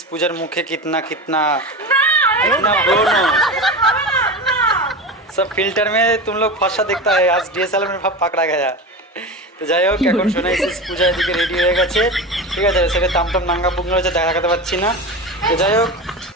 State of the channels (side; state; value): both; normal; correlation 0.26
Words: পূজার মুখে कितना बोलो सब फिल्टर में तुम लोग फंसा दिखता है, आज डीएसएलआर में पकड़ा गया। তো যাই হোক, এখন সোনাই সিস পূজা এদিকে রেডি হয়ে গেছে, ঠিক আছে। সেটা তামতাম নাঙ্গা পুঙ্গা হচ্ছে, দেখাতে পাচ্ছি না। তো যাই হোক,